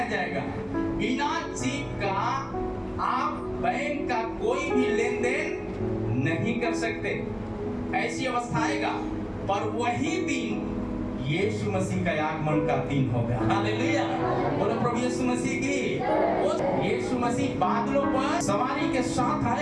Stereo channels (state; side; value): identical; both; correlation 1.00